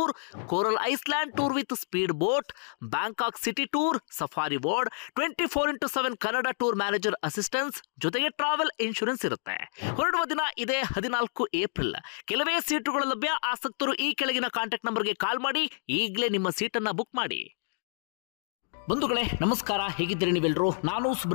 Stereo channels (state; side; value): silent; right; digital silence